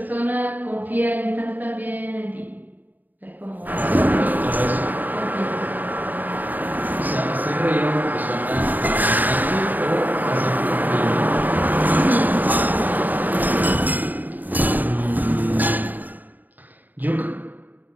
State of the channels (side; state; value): left; late; 0.085 ms